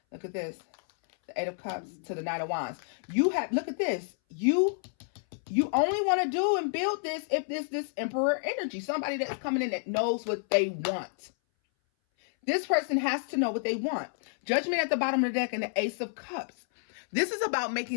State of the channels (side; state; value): right; silent; 58 dB below the other